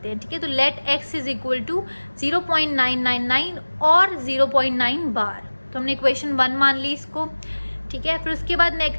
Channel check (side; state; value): both; inverted; correlation -1.00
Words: हैं. ठीक है, तो let x is equal to 0.999 और 0.9 बार. तो हमने इक्वेशन 1 मान ली इसको. ठीक है, फिर उसके बाद